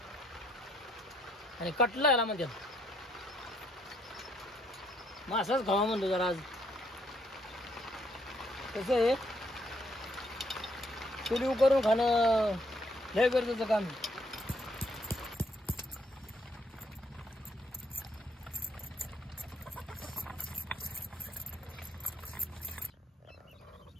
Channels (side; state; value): both; normal; correlation 0.70